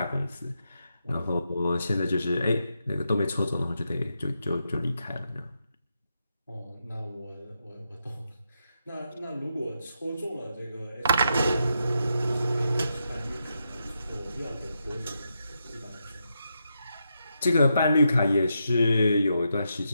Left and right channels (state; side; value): inverted; both; correlation -0.83